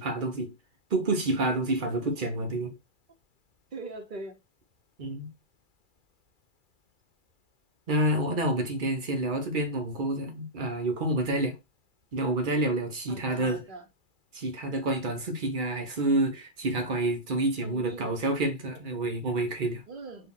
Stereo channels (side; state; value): left; late; 2.3 ms